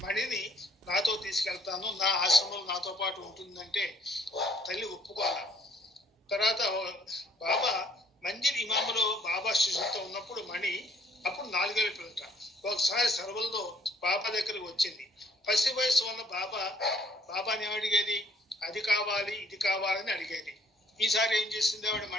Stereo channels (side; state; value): both; normal; correlation 0.63